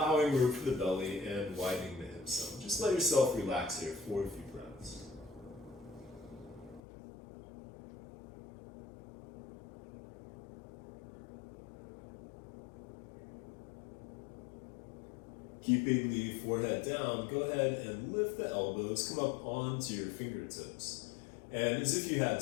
room for the belly and widening the hips some. Just let yourself relax here for a few breaths. Keeping the forehead down, go ahead and lift the elbows, come up onto your fingertips. And as if you had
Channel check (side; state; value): right; drops out; at 6.8 s